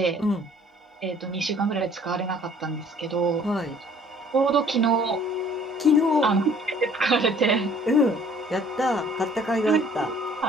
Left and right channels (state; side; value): normal; both; correlation 0.56